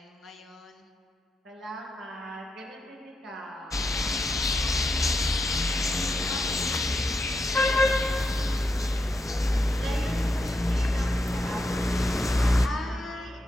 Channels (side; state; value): both; normal; correlation 0.84